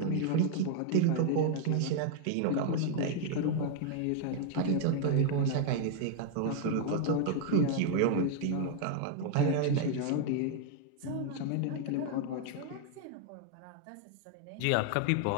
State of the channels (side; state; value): both; different; correlation 0.00